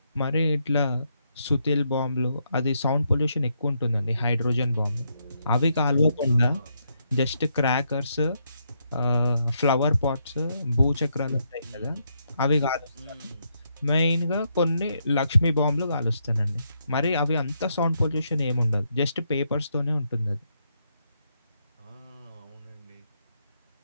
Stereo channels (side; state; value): both; inverted; correlation -0.78